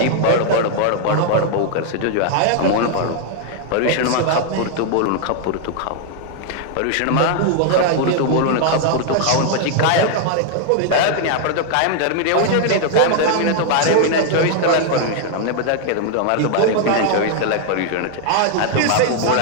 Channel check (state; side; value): different; both; correlation 0.00